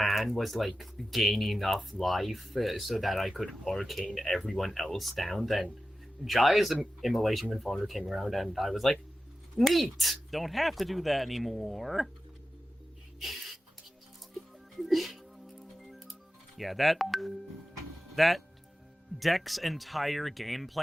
was like gain enough life so that I could arcane everyone else down. Then Jaya's Immolation Confonder came around, and I was like, neat! Don't have to do that anymore. Yeah, that deck's entire game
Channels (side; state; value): both; normal; correlation 0.93